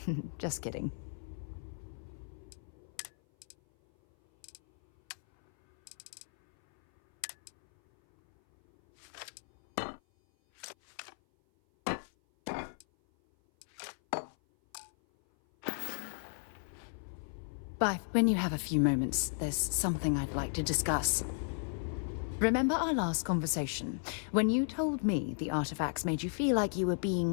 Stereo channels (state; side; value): silent; right; 55 dB below the other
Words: Just kidding. Bye. When you have a few moments, there's something I'd like to discuss. Remember our last conversation, when you told me the artifacts made you feel like you were